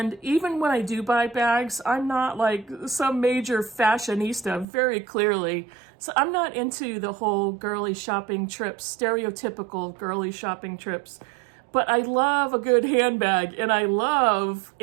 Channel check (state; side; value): drops out; left; at 4.7 s